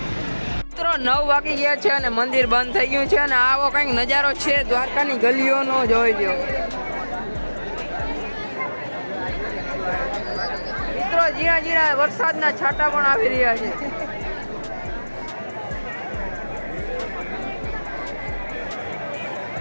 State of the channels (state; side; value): inverted; both; correlation -1.00